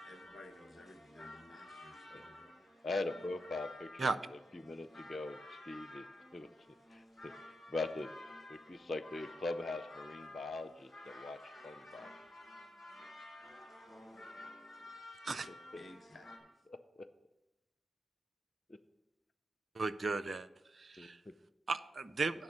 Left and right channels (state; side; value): normal; both; correlation 0.85